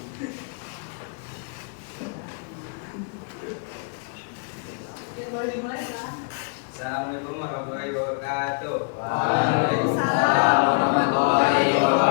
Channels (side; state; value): right; quieter; 36.4 dB